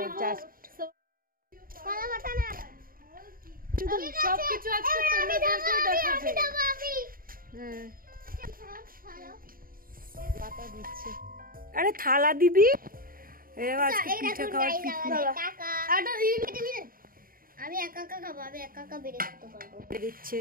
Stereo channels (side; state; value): left; late; 0.41 ms